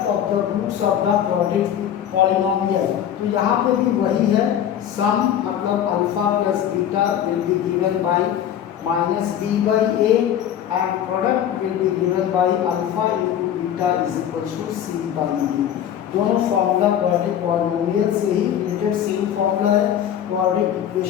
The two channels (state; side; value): quieter; right; 10.0 dB